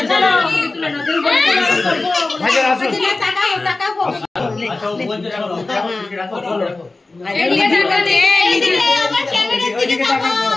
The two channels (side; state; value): right; quieter; 3.3 dB